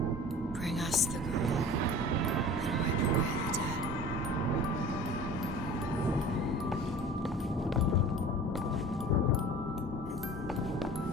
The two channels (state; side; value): normal; both; correlation 0.41